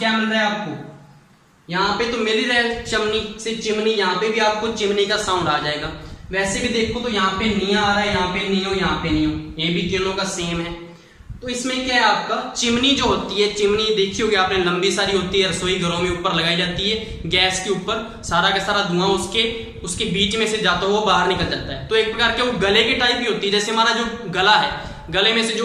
मिल रहा है आपको, यहाँ पे तो मिल ही रहा है चमनी से चिमनी, यहाँ पे भी आपको चिमनी का साउंड आ जाएगा। वैसे भी देखो तो यहाँ पे निया आ रहा है, यहाँ पे नियो, यहाँ पे नियो, ये भी तीनों का सेम है। तो इसमें क्या है आपका, चिमनी जो होती है, चिमनी देखी होगी आपने, लंबी सारी होती है, रसोई घरों में ऊपर लगाई जाती है, गैस के ऊपर, सारा का सारा धुआं उसके बीच में से जाता है, वो बाहर निकल जाता है। तो एक प्रकार के वो गले की टाइप ही होती है, जैसे हमारा जो गला है, गले में से जो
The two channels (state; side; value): identical; both; correlation 1.00